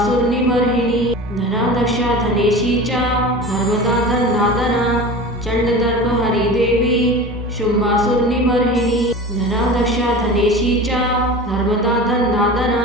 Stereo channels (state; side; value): normal; both; correlation 0.34